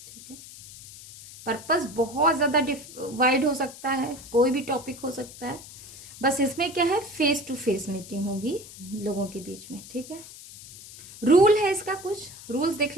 ठीक है। पर्पस बहुत ज्यादा वाइड हो सकता है, कोई भी टॉपिक हो सकता है। बस इसमें क्या है, फेस टू फेस मीटिंग होगी लोगों के बीच में। ठीक है। रूल है इसका, कुछ रूल्स देख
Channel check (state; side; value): noise; left; hiss, 16 dB below the sound